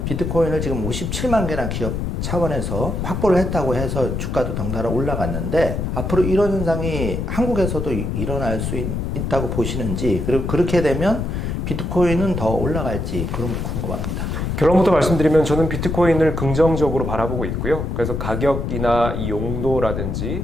비트코인을 지금 57만 개나 기업 차원에서 확보를 했다고 해서 주가도 덩달아 올라갔는데, 앞으로 이런 현상이 한국에서도 일어날 수 있다고 보시는지, 그리고 그렇게 되면 비트코인은 더 올라갈지 그런 거 궁금합니다. 결론부터 말씀드리면 저는 비트코인을 긍정적으로 바라보고 있고요. 그래서 가격이나 이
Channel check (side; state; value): left; noise; rumble, 2 dB below the sound